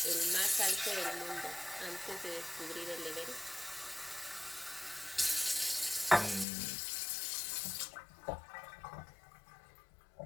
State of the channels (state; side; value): drops out; right; at 6.5 s